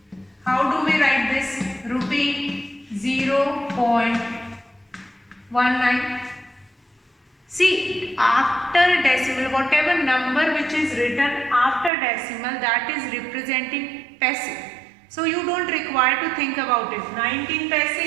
How do we write this? Rupee 0.19. See, after decimal, whatever number which is written after decimal, that is representing paisa. So you don't require to think about it. 19 paisa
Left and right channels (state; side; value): drops out; left; at 11.9 s